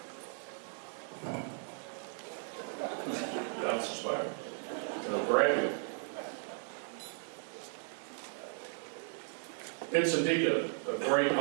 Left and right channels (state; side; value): silent; left; 54 dB below the other